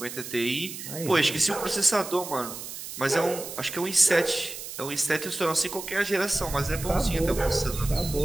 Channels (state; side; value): noise; right; hiss, 10 dB below the sound